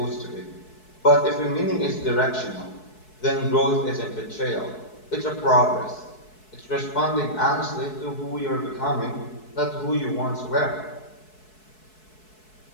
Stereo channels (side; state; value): right; late; 4.7 ms